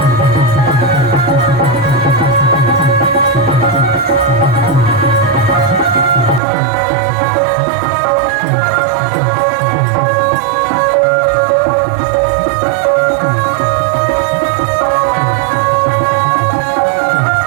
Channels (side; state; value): left; drops out; at 6.4 s